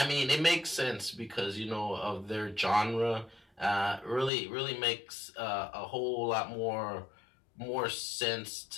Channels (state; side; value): drops out; right; at 4.3 s